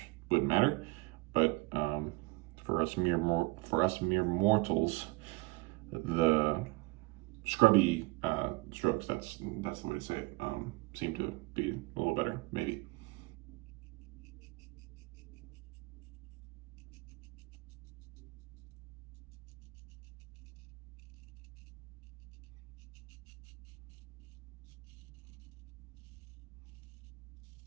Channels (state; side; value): quieter; left; 23.8 dB